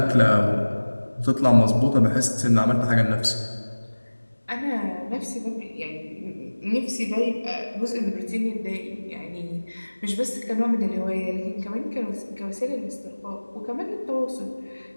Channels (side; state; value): both; inverted; correlation -1.00